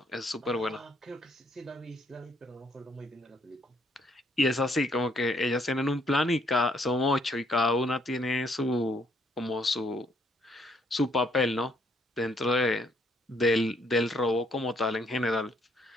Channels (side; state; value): both; normal; correlation 0.68